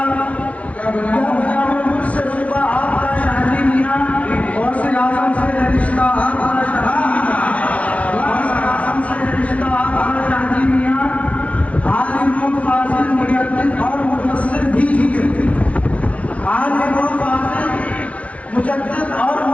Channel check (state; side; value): late; right; 0.065 ms